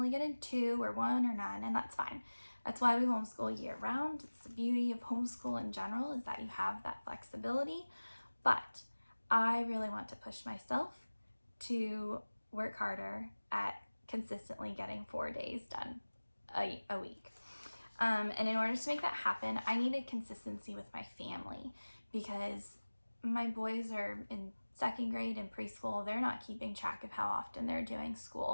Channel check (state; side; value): inverted; both; correlation -1.00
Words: get in 2 or 1 or none, and that's fine. That's why we homeschool year round. It's the beauty of homeschool in general, is that you have that flexibility. But I really want to push myself to work harder at consistently getting 4 days done a week. And in order to make that happen, I needed consistency with my family, because my boys are in 2nd grade and preschool. They're not keeping track of how often they're doing